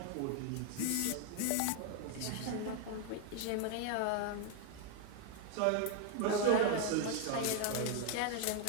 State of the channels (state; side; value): different; both; correlation 0.01